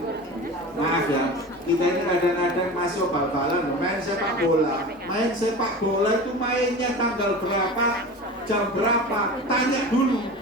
Maaf ya, kita ini kadang-kadang masih bal-balan, main sepak bola itu mainnya tanggal berapa, jam berapa, tanya dulu.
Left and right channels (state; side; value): normal; both; correlation 0.33